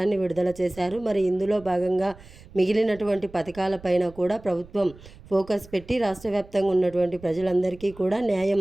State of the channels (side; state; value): right; noise; rumble, 21 dB below the sound